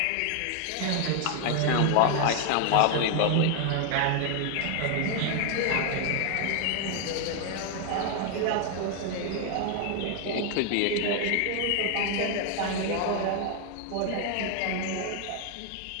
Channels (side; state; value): both; different; correlation 0.01